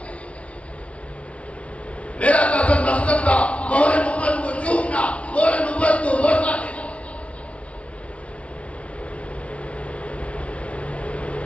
میرا قصد مقصد تھا مہر نبوت کو چومنا، مہر نبوت کو بوسہ دینا.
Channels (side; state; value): right; late; 0.063 ms